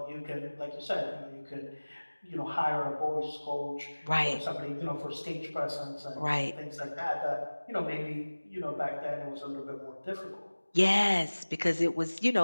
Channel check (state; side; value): inverted; both; correlation -1.00